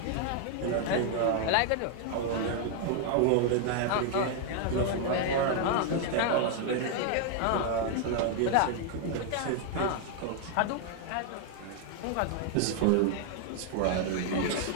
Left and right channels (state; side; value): different; both; correlation 0.00